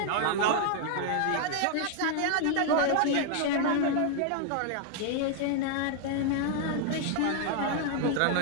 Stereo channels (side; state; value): both; different; correlation 0.00